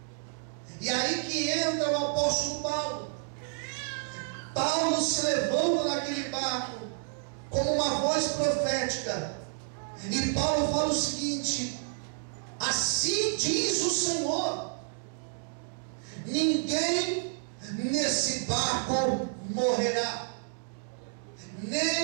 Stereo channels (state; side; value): silent; left; digital silence